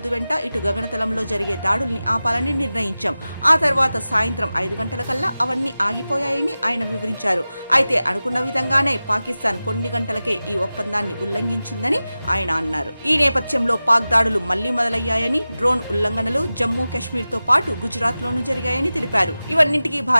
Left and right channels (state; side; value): inverted; both; correlation -0.96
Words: వెంట ఇటు గగనతలంలో జరిగే దాడుల్ని ఆపాలని నిర్ణయించాం. ఆ తర్వాత సాయంత్రం 5 గంటలకల్లా అవన్నీ ఆగిపోయాయని ఆయన వివరించారు. అయితే అనుకున్న విధంగానే పాకిస్తాన్ కొన్ని గంటలకే ఈ ఒప్పందాన్ని ఉల్లంఘించిందని ఆయన అన్నారు. ఈ నేపథ్యంలో పాక్ దాడులు మళ్లీ మొదలయ్యాయని, డ్రోన్ ఉల్లంఘనలు జమ్మూ కాశ్మీర్ తో పాటు గుజరాత్ లోనూ జరిగాయని తెలిపారు. ఇవన్నింటికీ